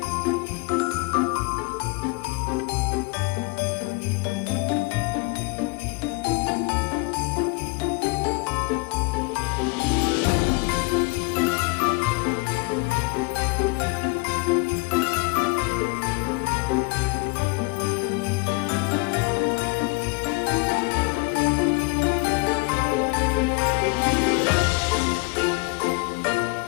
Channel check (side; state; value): right; quieter; 28.4 dB